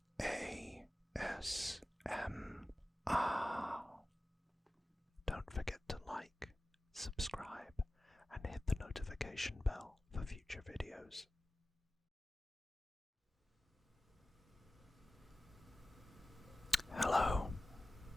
ASMR. Don't forget to like, subscribe, and hit the notification bell for future videos. Hello,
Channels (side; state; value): both; normal; correlation 0.96